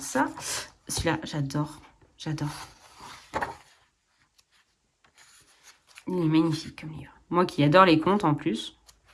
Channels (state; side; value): identical; both; correlation 1.00